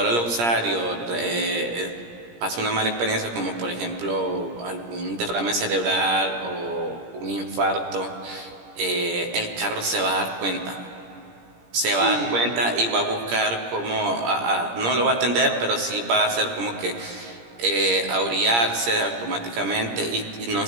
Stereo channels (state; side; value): late; left; 17 ms